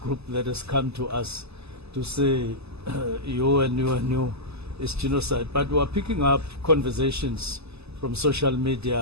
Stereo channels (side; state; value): left; late; 0.79 ms